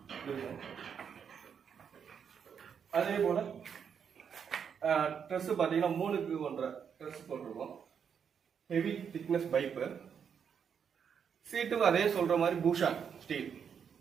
அதே போல் ட்ரெஸ்ஸு பார்த்தீங்கன்னா 3க்கு 1.5 ட்ரெஸ் போட்டிருக்கோம். Heavy thickness pipe. சீட்டுக்கு அதே சொல்கிற மாதிரி பூஷான் ஸ்டீல்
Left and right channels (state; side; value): quieter; left; 7.3 dB